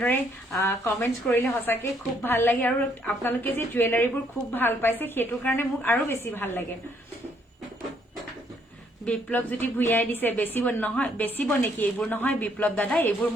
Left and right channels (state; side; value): normal; both; correlation 0.69